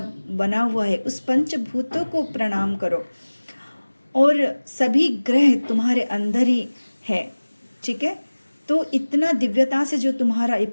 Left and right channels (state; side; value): inverted; both; correlation -1.00